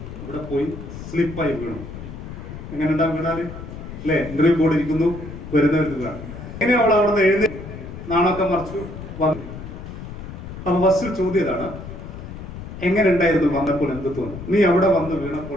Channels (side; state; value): left; noise; rumble, 11 dB below the sound